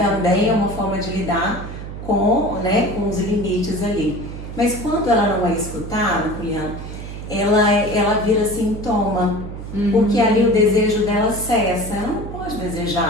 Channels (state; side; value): noise; right; hum, 9 dB below the sound